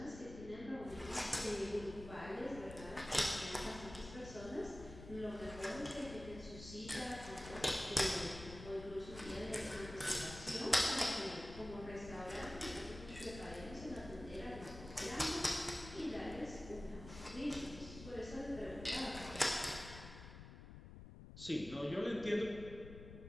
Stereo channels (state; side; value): noise; left; rumble, 13 dB below the sound